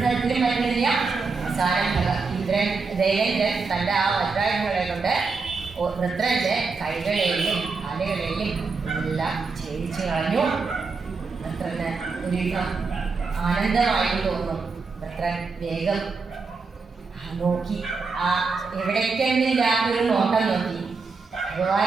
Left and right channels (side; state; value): left; quieter; 4.5 dB